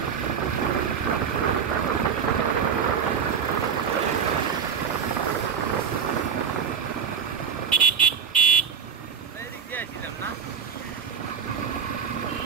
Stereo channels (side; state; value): left; quieter; 6.8 dB